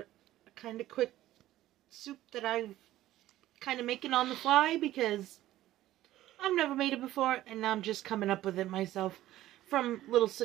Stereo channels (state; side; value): quieter; left; 14.6 dB